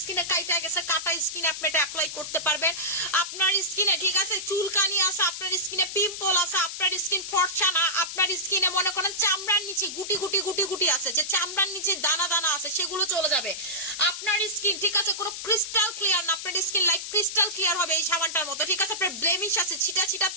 স্কিনে কাইটা গেছে, কাটা স্কিন আপনি এটা অ্যাপ্লাই করতে পারবেন। আপনার স্কিনে, ঠিক আছে, চুলকানি আছে, আপনার স্কিনে পিম্পল আছে, আপনার স্কিন ফর্সা না, আপনার স্কিনে মনে করেন চামড়ার নিচে গুটি গুটি আছে, যে চামড়ার নিচে দানা দানা আছে, সেগুলো চলে যাবে। আপনার স্কিন, ঠিক আছে, কোনো ক্রিস্টাল ক্লিয়ার না, আপনার স্কিন লাইক ক্রিস্টাল ক্লিয়ার হবে এই সাবানটার মতো, ঠিক আছে? আপনার ব্লেমিশ আছে, ছিটা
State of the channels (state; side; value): noise; left; hiss, 7 dB below the sound